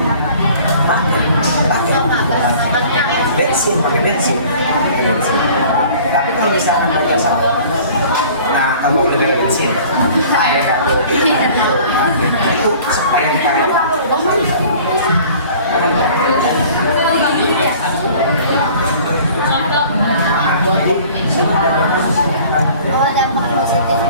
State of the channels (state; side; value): inverted; both; correlation -0.49